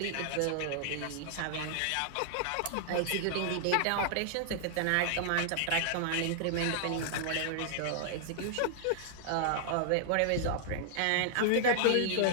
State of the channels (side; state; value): both; different; correlation -0.01